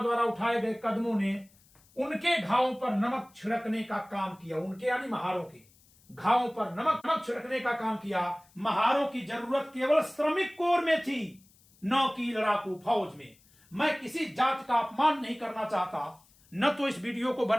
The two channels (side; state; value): left; noise; hiss, 30 dB below the sound